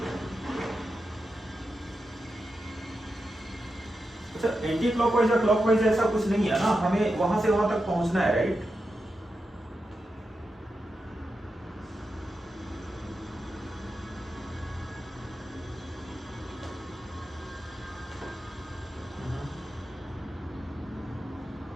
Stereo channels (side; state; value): both; normal; correlation 0.88